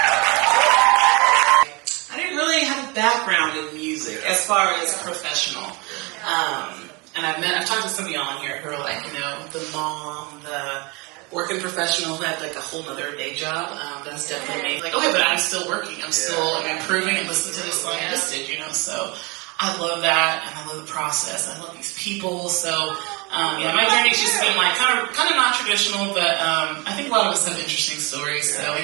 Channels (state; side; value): quieter; left; 27.7 dB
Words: I didn't really have a background in music as far as professional. And I've talked to some of y'all on here who are like, you know, the mom, the working professional who had like a whole nother day job. That's definitely me. Like, okay, but I'm still working. I'm still improving and listening to this song I just did, you know, so I love that, and I love the process. I love these people. So, yeah, my journey's just been like kind of non-traditional, but I think a lot of us have interesting stories, so we